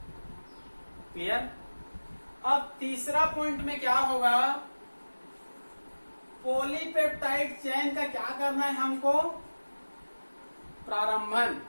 क्लियर? अब तीसरा पॉइंट में क्या होगा? पॉलीपेप्टाइड चेन का क्या करना है हमको? प्रारंभन।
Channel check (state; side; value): inverted; both; correlation -1.00